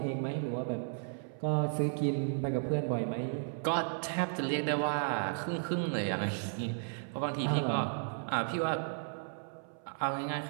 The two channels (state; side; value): silent; left; 55 dB below the other